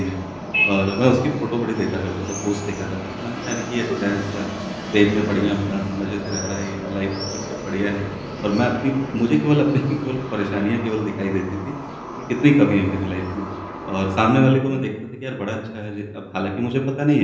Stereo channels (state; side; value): identical; both; correlation 1.00